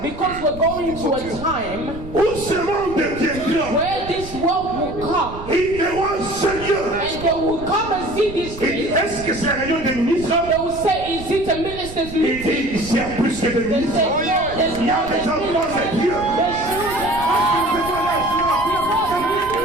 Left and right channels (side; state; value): right; noise; rumble, 13 dB below the sound